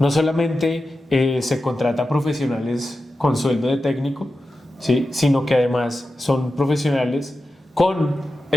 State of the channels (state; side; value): normal; both; correlation 0.92